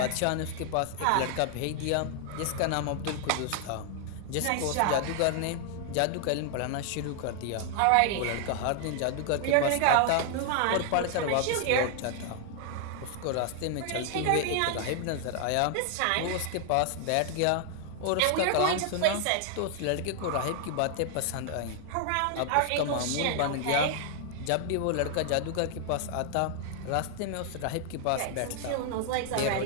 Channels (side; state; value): both; different; correlation 0.00